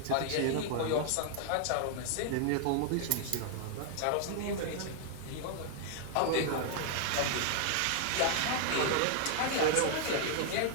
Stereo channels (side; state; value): both; different; correlation 0.00